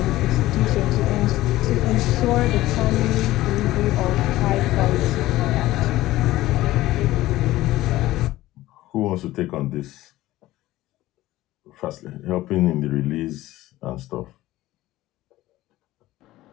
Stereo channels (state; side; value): quieter; right; 16.4 dB